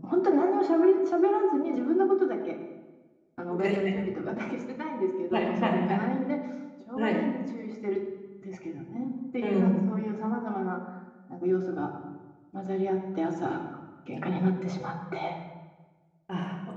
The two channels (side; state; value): both; identical; correlation 1.00